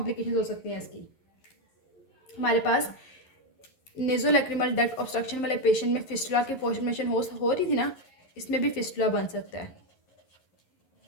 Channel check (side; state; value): right; late; 11 ms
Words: हो सकती हैं इसकी। हमारे पास नेज़ोलैक्रिमल डक्ट ऑब्स्ट्रक्शन वाले पेशेंट में फिस्टुला की फॉर्मेशन हो रही थी ना, इसमें भी फिस्टुला बन सकता है